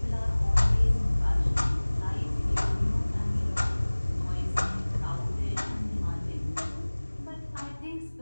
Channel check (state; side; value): inverted; both; correlation -1.00